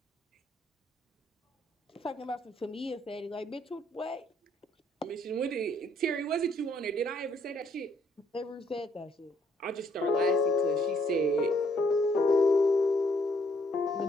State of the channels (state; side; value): normal; both; correlation 0.68